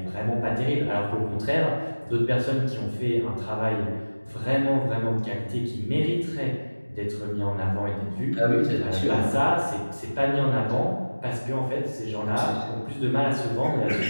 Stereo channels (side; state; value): both; inverted; correlation -1.00